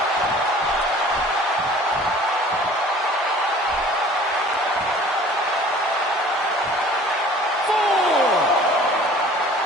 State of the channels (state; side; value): normal; both; correlation 0.48